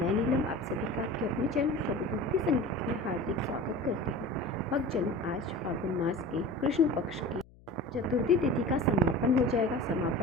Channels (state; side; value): noise; left; hum, 25 dB below the sound